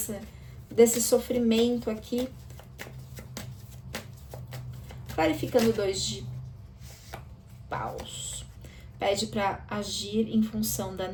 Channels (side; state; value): both; identical; correlation 1.00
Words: desse sofrimento aqui. Clarificando o 2 de paus. Pede para agir em função da